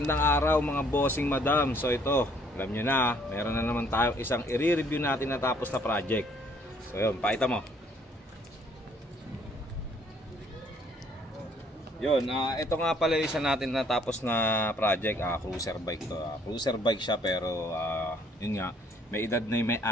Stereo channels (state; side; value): normal; both; correlation 0.62